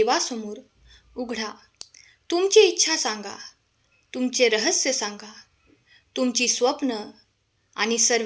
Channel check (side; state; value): both; identical; correlation 1.00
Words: उघडा. तुमची इच्छा सांगा, तुमचे रहस्य सांगा, तुमची स्वप्न आणि